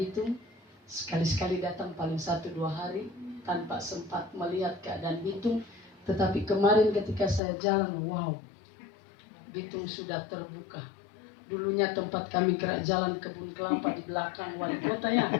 Sekali-sekali datang paling 1-2 hari tanpa sempat melihat keadaan Bitung. Tetapi kemarin ketika saya jalan, wow, Bitung sudah terbuka. Dulunya tempat kami gerak jalan kebun kelapa di belakang wali kota ya,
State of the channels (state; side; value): drops out; right; at 7.4 s